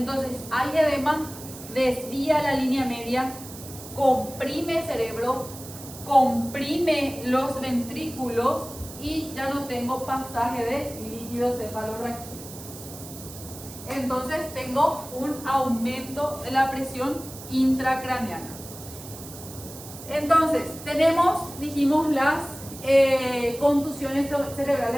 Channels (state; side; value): noise; right; hiss, 14 dB below the sound